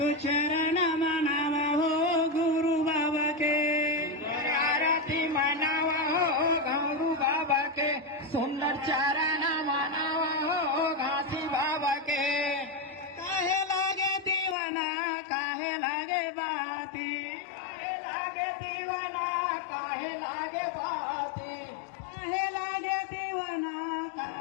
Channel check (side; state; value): right; drops out; at 14.6 s